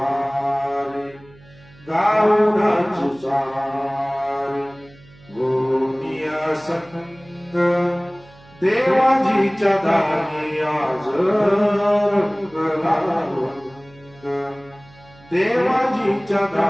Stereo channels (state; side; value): noise; right; hum, 25 dB below the sound